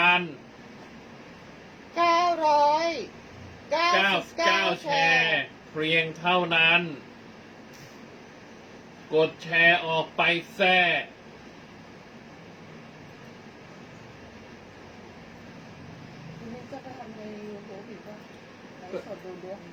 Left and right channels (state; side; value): identical; both; correlation 1.00